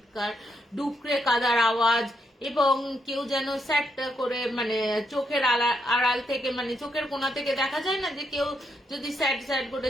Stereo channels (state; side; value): normal; both; correlation 0.78